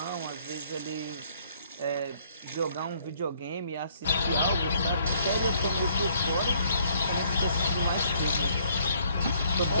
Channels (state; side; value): inverted; both; correlation -0.64